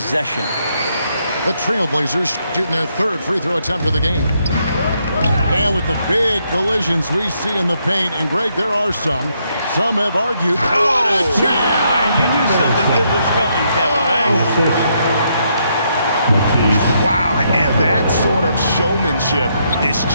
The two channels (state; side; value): inverted; both; correlation -0.76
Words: The Trailblazers shooting their third free throw attempt of the game. And with the big collisions we see in the paint, and Greg, there are some. Some have argued. What a jam! You knew something good was coming, Kevin, right? Wow, and that sort of showmanship is